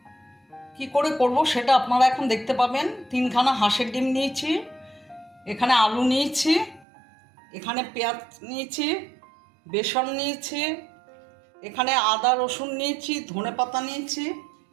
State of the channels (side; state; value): left; drops out; at 6.9 s